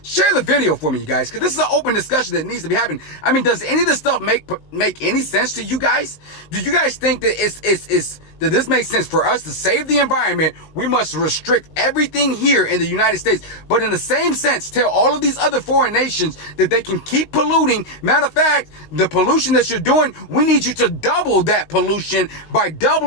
Share the video for me, you guys, because this is an open discussion that needs to be happening. I mean, does any of this stuff make any sense to you guys? Do you guys think that that this makes sense? For us to save the environment, we must restrict everything here in the United States. But in the same sense, tell all of these other foreign nations that they can keep polluting. Matter of fact, the pollution that you're doing, we need you to double that pollution by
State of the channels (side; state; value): right; late; 19 ms